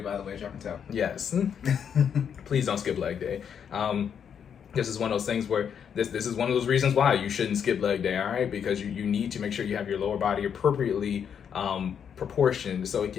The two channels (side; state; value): right; quieter; 7.8 dB